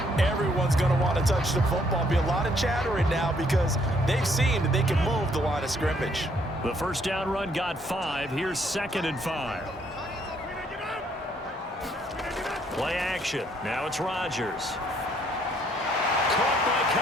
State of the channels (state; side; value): normal; both; correlation 0.67